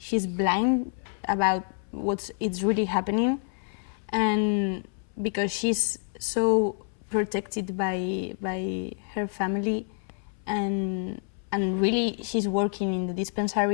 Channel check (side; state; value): right; silent; 60 dB below the other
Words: blind about it's really happening, and because she's so protected by her family, and really she's working in the